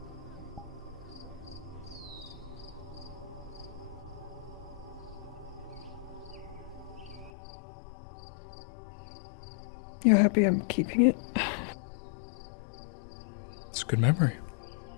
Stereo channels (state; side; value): drops out; right; at 7.3 s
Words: You're happy I'm keeping it? It's a good memory.